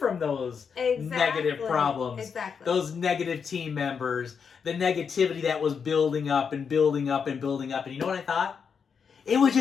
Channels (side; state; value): right; quieter; 6.4 dB